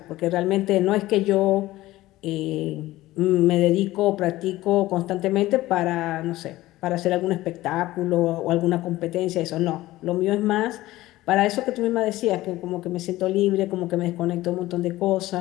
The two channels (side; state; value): right; quieter; 17.0 dB